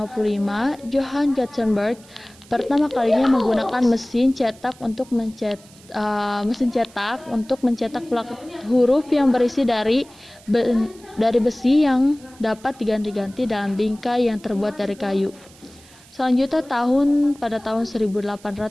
Johann Gutenberg pertama kalinya menggunakan mesin cetak untuk mencetak huruf yang berisi dari besi yang dapat diganti-ganti dalam bingkai yang terbuat dari kayu. Selanjutnya pada tahun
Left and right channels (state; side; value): noise; right; hiss, 25 dB below the sound